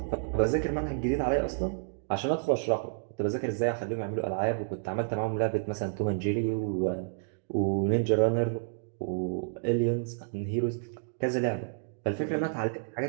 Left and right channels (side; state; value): left; silent; digital silence